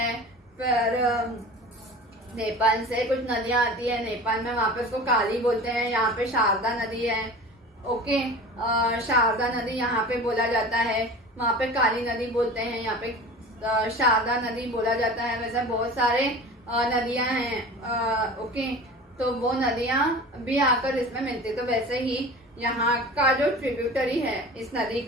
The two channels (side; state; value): both; normal; correlation 0.37